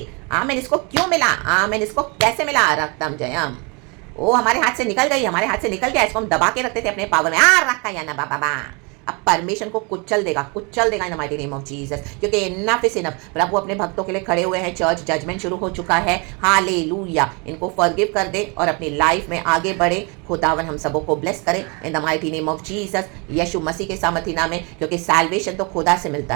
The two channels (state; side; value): quieter; left; 31.1 dB